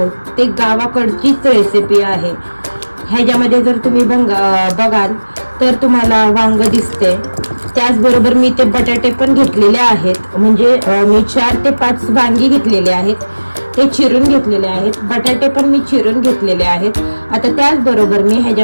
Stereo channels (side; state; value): both; inverted; correlation -1.00